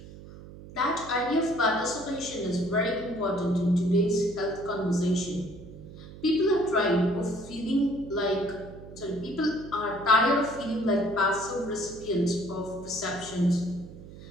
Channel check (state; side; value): noise; right; hum, 16 dB below the sound